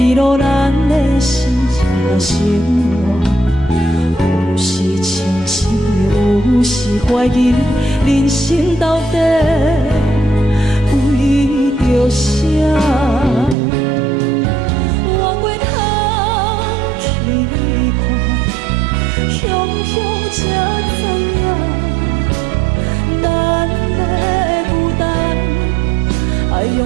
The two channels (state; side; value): drops out; left; at 13.6 s